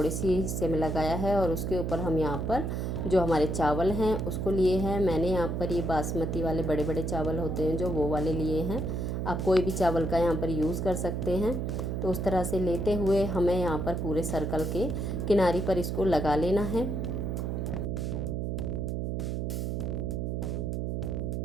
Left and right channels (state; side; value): noise; right; hum, 1 dB below the sound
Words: सी हिस्से में लगाया है और उसके ऊपर हम यहाँ पर जो हमारे चावल हैं उसको लिए हैं। मैंने यहाँ पर ये बासमती वाले बड़े बड़े चावल होते हैं जो वो वाले लिए हैं। आप कोई भी चावल का यहाँ पर यूज़ कर सकते हैं। तो उस तरह से लेते हुए हमें यहाँ पर पूरे सर्कल के किनारे पर इसको लगा लेना है।